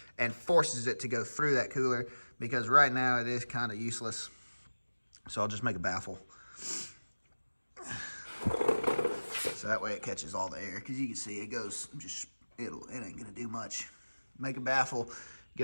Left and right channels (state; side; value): inverted; both; correlation -1.00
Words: and forces it to go through that cooler, because right now it is kind of useless. So I'll just make a baffle, so that way it catches all the air, because you can see it goes just, it ain't gonna do much. Make a baffle,